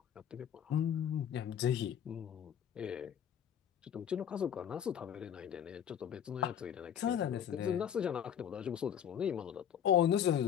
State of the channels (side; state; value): right; quieter; 9.0 dB